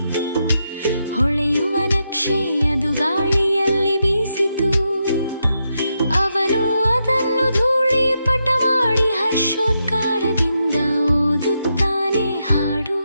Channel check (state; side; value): inverted; both; correlation -0.84